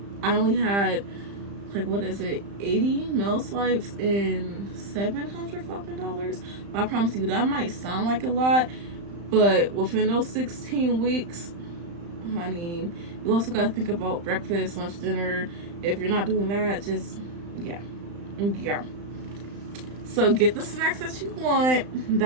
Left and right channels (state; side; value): late; left; 35 ms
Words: I only had like, what is it, 80 meal swipes and 700 fucking dollars. I promise you that might sound like a lot, but within those 16 weeks, honey, you also got to think about breakfast, lunch, dinner. If you're not doing that, just yeah. So get the snacks that you want.